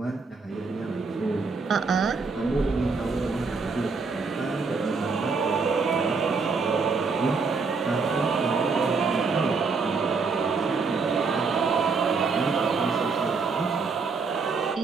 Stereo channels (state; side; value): quieter; left; 4.7 dB